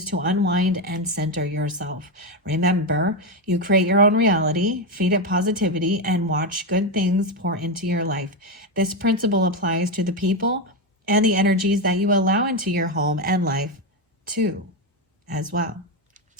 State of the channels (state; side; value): normal; both; correlation 0.09